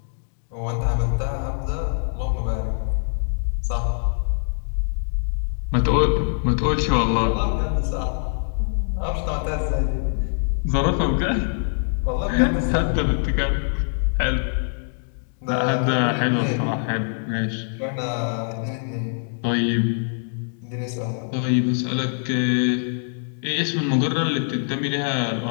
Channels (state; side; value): silent; right; digital silence